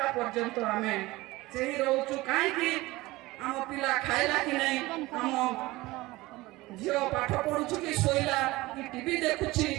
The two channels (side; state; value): left; quieter; 19.9 dB